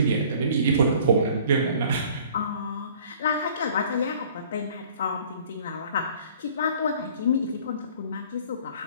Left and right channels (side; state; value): both; inverted; correlation -0.51